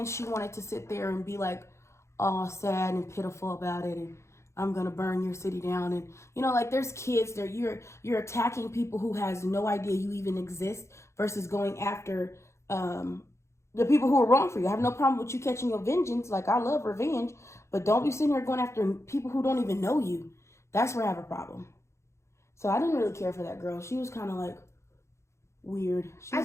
she wanted to sit there and be like all sad and pitiful about it, and I'm gonna burn your city down. And you know, like there's kids there, you're attacking people who has no idea you even exist, versus going after the people who are wrong for you. I have no problem with you catching your vengeance, like I love revenge, but don't be sitting here going after people who don't even know you. That's where I have a problem. So I didn't really care for that girl. She was kind of like weird. I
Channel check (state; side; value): late; right; 0.14 ms